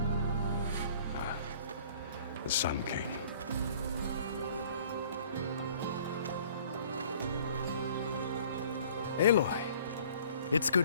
The Sun King. Aloy, It's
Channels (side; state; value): both; inverted; correlation -0.53